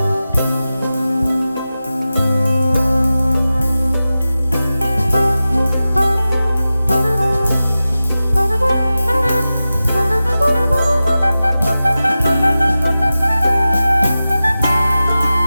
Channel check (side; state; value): both; inverted; correlation -0.95